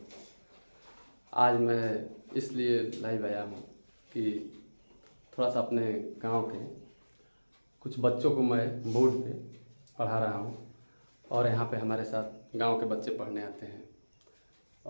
आज मैं इसलिए लाइव आया हूँ कि थोड़ा सा अपने गांव के कुछ बच्चों को मैं बोर्ड पे पढ़ा रहा हूँ और यहाँ पे हमारे साथ गांव के बच्चे पढ़ने आते हैं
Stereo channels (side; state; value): both; inverted; correlation -1.00